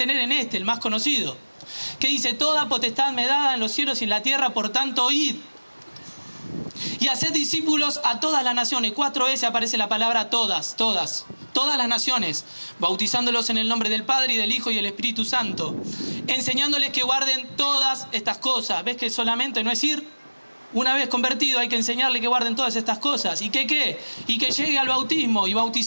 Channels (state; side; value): inverted; both; correlation -1.00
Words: en este, el más conocido, que dice, toda potestad me dada en los cielos y en la tierra, por tanto, id. Y haced discípulos a todas las naciones. 4 veces aparece la palabra todas las naciones, bautizándolos en el nombre del Padre y del Hijo y del Espíritu Santo, enseñándoles que guarden todas estas cosas. ¿Ves que solamente no es ir? Una vez convertido hay que enseñarle que guarden todas estas cosas. ¿Y qué? Y que llegue al bautismo y